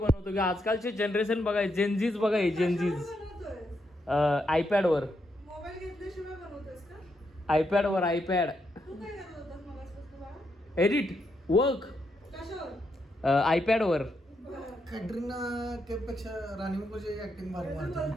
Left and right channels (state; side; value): normal; both; correlation 0.80